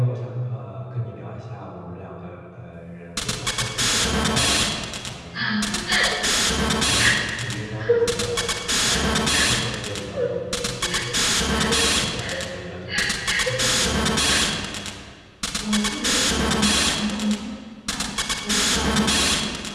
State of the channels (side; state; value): both; identical; correlation 1.00